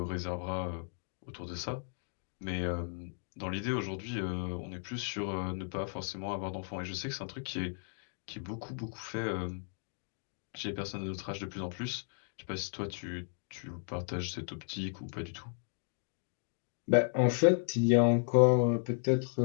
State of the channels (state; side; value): silent; right; 54 dB below the other